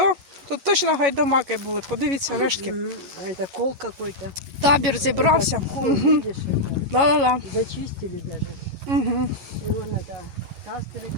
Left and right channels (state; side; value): late; left; 11 ms